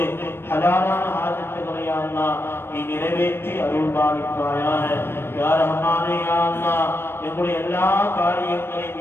ஹலாலான ஹாஜத்துகளை யா அல்லாஹ் நீ நிறைவேற்றி அருள்பாலிப்பாயாக. யா ரஹ்மானே யா அல்லாஹ் எங்களுடைய எல்லா காரியங்களையும்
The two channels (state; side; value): late; right; 0.11 ms